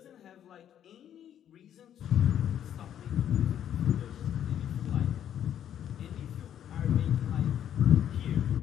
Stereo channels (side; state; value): right; quieter; 10.1 dB